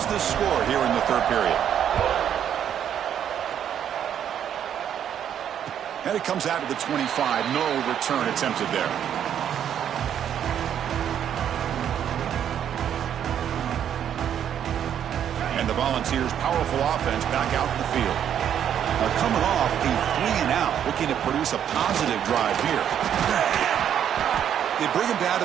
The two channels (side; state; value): left; quieter; 9.4 dB